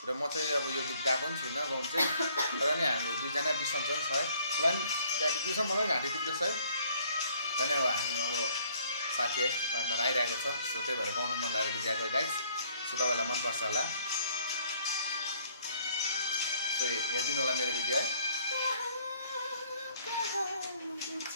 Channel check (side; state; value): both; inverted; correlation -0.62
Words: र म चाहिँ अब यो गीत गाएको पनि छुइनँ गाउँ चाहिँ, तर नि हाम्रो दुईजना बिसन्चन छ है। र नि घाँटी दुख्छ, मलाई घाँटी दुख्दैछ है। र नि अब हामी अब साथी है पार्टनर आइरहेको छ, सो त्यही भएर गाउनु मन लागेर गीत गाएको गाइस। सो तपाईँहरूलाई मनपर्छ होला, सो हेरिदिनु होला मेरो भिडियो है।